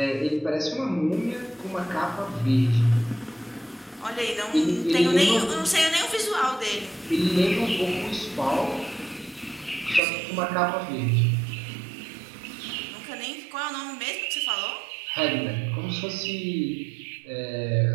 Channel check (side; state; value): left; drops out; at 10.0 s